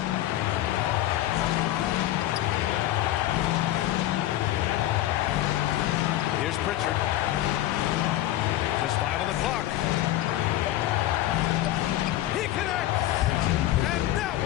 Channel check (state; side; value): quieter; right; 14.3 dB